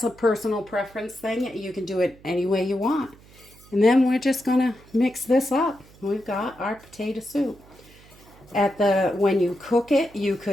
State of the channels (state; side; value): noise; right; hum, 24 dB below the sound